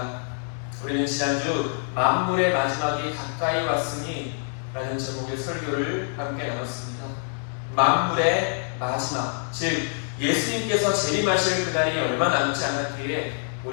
우리는 지난주 만물의 마지막이 가까이 왔으니 라는 제목의 설교를 함께 나눴습니다. 만물의 마지막, 즉 예수님께서 재림하실 그날이 얼마 남지 않았기에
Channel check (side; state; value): right; silent; digital silence